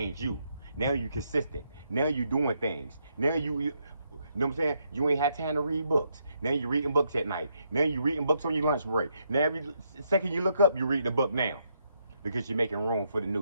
you. Now you consistent. Now you doing things. Now you know what I'm saying? You ain't had time to read books. Now you're reading books at night. Now you're reading books on your lunch break. Now every second you look up, you read the book now. Because you're making room for the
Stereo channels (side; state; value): both; inverted; correlation -0.77